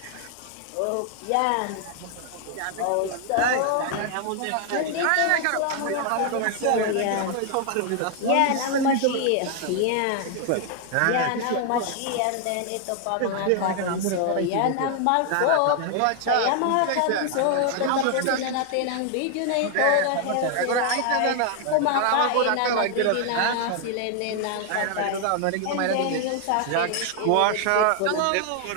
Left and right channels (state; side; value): different; both; correlation 0.00